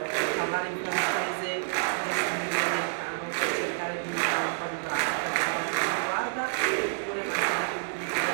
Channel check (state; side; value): silent; left; digital silence